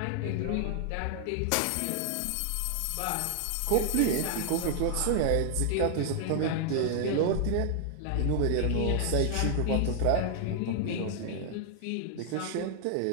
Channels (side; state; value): both; different; correlation 0.00